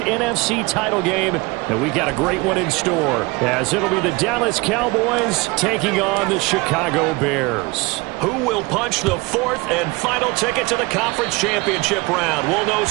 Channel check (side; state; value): left; quieter; 24.5 dB